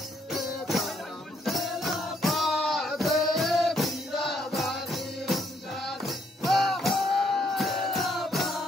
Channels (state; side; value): normal; both; correlation 0.70